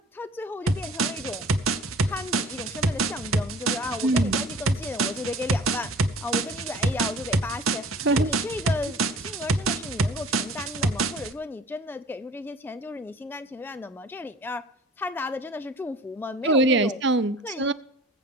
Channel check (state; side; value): normal; both; correlation 0.47